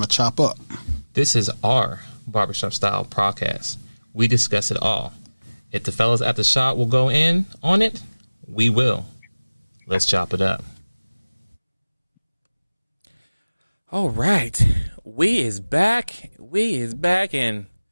to chop up. This is our Barbershop style podcast. We discuss it all. If the fellas at the shop will go in on it, we will. Let's chop it up. All right. We is back, and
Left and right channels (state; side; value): inverted; both; correlation -1.00